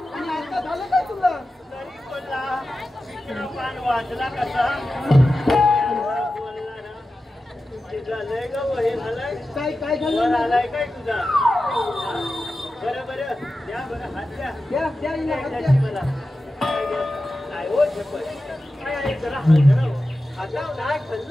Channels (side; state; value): both; normal; correlation 0.93